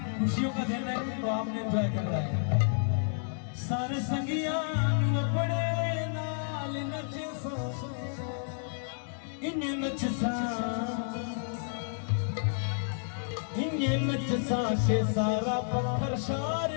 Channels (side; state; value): right; silent; digital silence